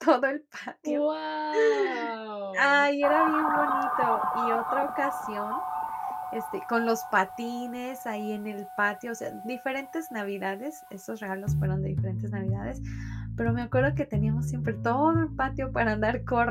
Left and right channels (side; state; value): both; identical; correlation 1.00